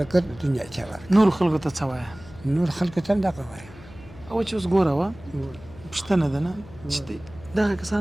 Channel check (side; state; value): left; noise; hum, 19 dB below the sound